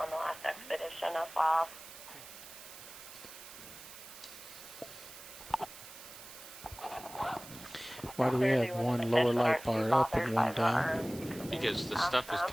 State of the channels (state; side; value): noise; right; hiss, 15 dB below the sound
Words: the last expedition as well. Why do we have one lower light bar up and one down? Because the stuff is